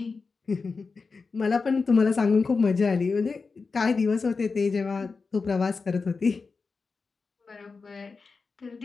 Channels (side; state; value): right; quieter; 4.5 dB